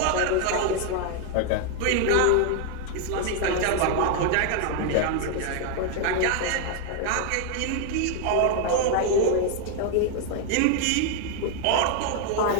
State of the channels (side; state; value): both; different; correlation 0.00